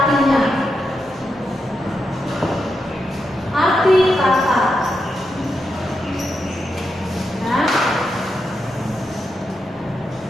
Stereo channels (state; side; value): normal; both; correlation 0.85